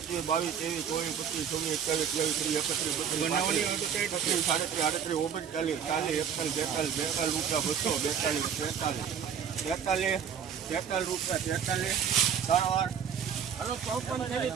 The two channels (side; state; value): left; quieter; 8.0 dB